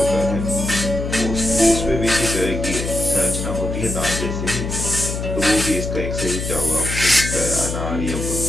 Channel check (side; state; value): left; noise; hum, 4 dB below the sound